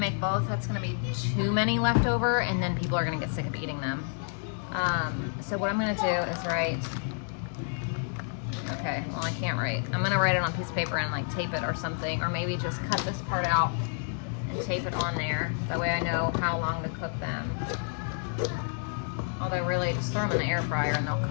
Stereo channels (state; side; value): silent; right; 58 dB below the other